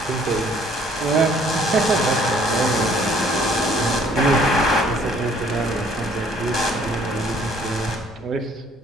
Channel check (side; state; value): both; normal; correlation 0.60